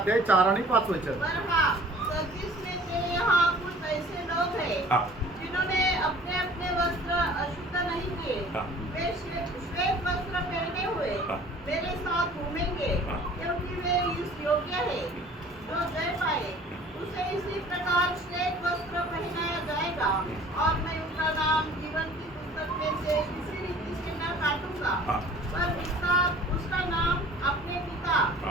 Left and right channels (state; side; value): normal; both; correlation 0.49